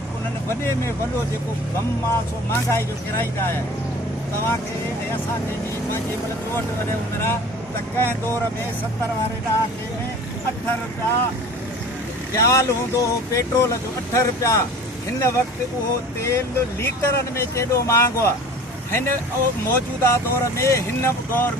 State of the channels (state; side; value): normal; both; correlation 0.42